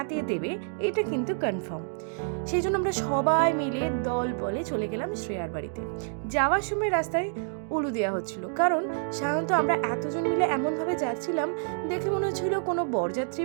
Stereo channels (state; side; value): silent; left; digital silence